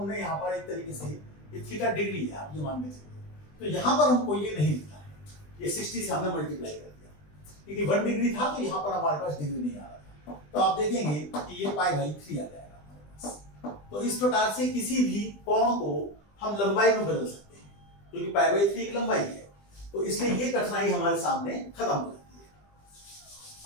यहां पर एक तरीके से ये थीटा डिग्री है आप ये मान के चलिए, तो यहां पर हमको ये नहीं लिखना है, ये 60 से हमने मल्टीप्लाई कर दिया क्योंकि 1 डिग्री था, तो यहां पर हमारे पास डिग्री नहीं आ रहा था। तो आप देखेंगे कि ये पाई बाई 3 आ जाएगा हमारे पास। तो इस प्रकार से किसी भी कोण को हम लंबाई में बदल सकते हैं, क्योंकि पाई बाई 3 एक लंबाई है, तो इसलिए ये कठिनाई हमारे सामने खत्म हो जाती है।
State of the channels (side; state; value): right; late; 20 ms